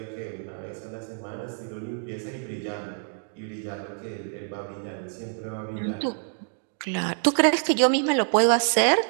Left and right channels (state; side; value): silent; left; 56 dB below the other